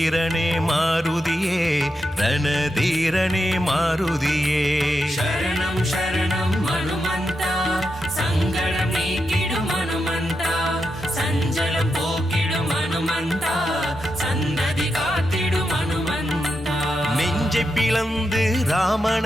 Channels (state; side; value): normal; both; correlation 0.86